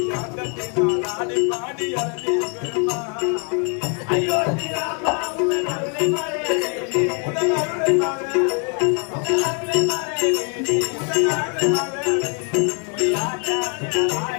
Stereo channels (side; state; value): right; quieter; 37.9 dB